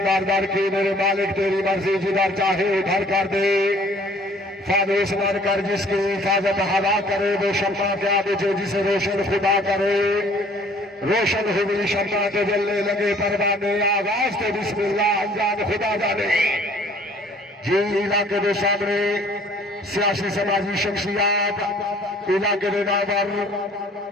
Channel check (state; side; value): normal; both; correlation 0.55